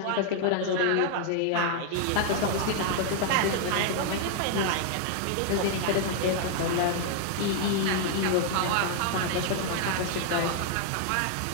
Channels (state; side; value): different; both; correlation 0.00